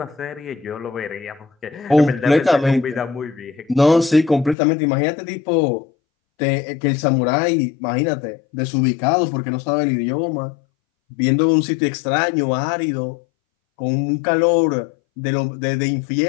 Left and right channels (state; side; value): drops out; right; at 4.5 s